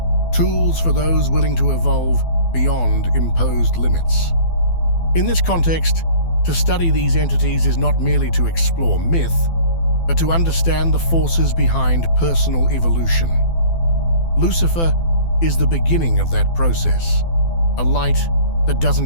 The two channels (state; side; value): late; right; 12 ms